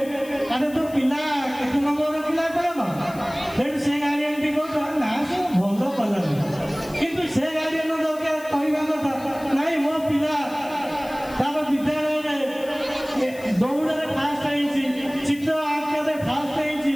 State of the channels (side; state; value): left; noise; hiss, 20 dB below the sound